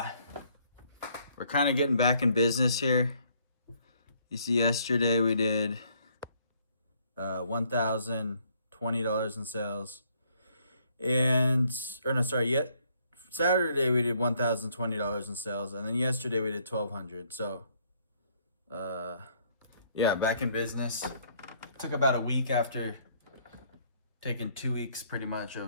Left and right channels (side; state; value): both; inverted; correlation -0.66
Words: We're kind of getting back in business here. You see, yesterday we did $1,020 in sales, Saturday we did $1,020 in sales, and then yesterday we did $1,200. So, yeah, back in business. Took about a week after taking 2 weeks pretty much